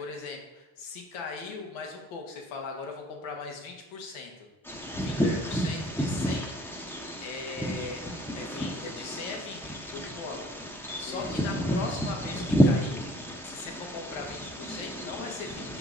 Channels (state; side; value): normal; both; correlation 0.58